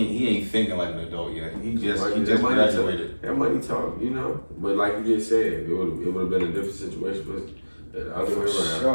thinking like an adult yet. He just graduated. That money talk, you know. But like you just said, it would have been a different situation, but the other way around.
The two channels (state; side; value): inverted; both; correlation -1.00